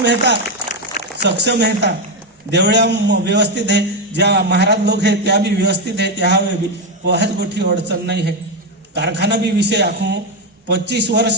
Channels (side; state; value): both; normal; correlation 0.07